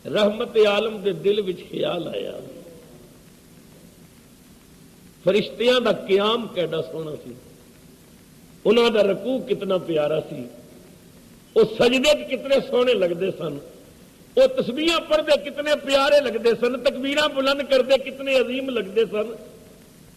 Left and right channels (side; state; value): both; identical; correlation 1.00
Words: رحمت عالم دے دل وچ خیال آیا فرشتیاں دا قیام کیڈا سونا سی، انہاں دا رکوع کتنا پیارا سی، وہ سجدے کتنے سونے لگتے سن، وہ تسبیحاں پڑھتے کتنے پیارے لگتے سن، تکبیراں بلند کرتے کتنے عظیم لگتے سن۔